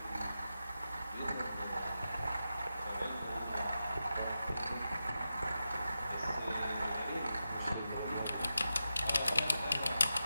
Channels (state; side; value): inverted; both; correlation -0.90